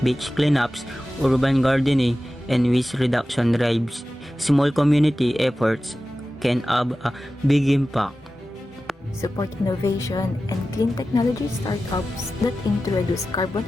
beach cleanups, urban gardening, and waste reduction drives. Small community efforts can have a big impact. Support innovation and clean technology startups that aim to reduce carbon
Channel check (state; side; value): normal; both; correlation 0.94